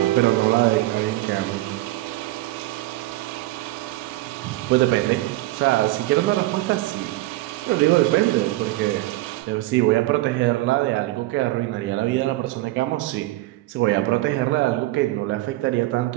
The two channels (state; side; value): quieter; left; 17.7 dB